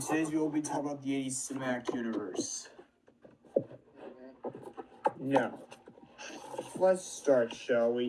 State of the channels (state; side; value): identical; both; correlation 1.00